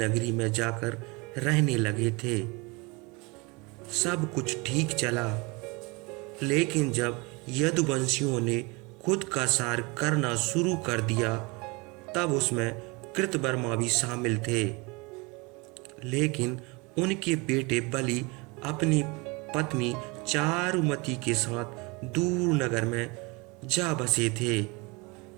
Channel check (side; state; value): left; quieter; 27.3 dB